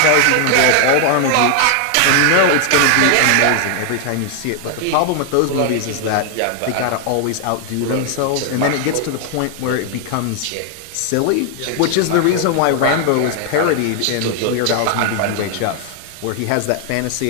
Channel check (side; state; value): both; different; correlation 0.00